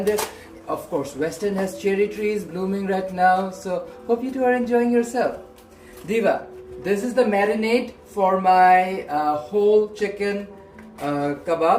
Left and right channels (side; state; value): both; identical; correlation 1.00